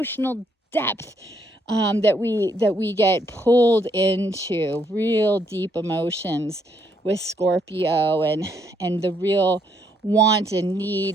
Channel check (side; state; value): both; normal; correlation 0.72